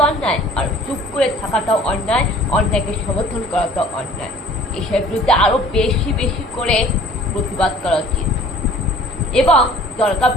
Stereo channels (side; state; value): both; normal; correlation 0.51